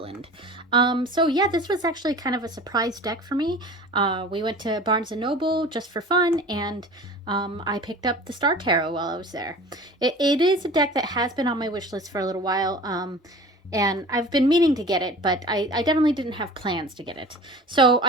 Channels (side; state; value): both; normal; correlation 0.40